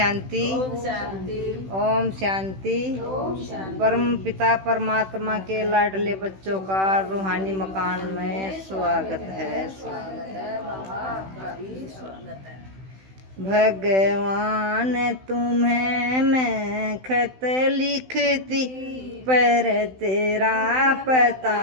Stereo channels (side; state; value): left; late; 16 ms